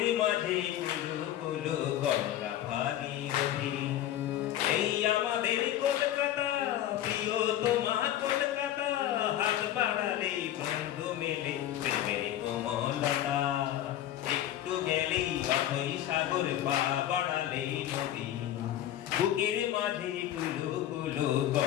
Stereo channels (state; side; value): quieter; right; 12.3 dB